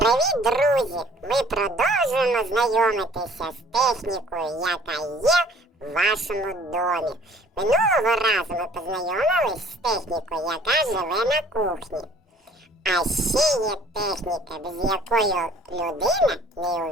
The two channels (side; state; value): both; normal; correlation 0.54